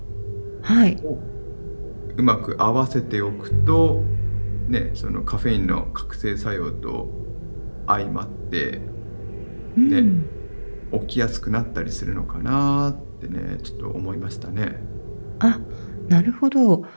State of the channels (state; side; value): inverted; both; correlation -1.00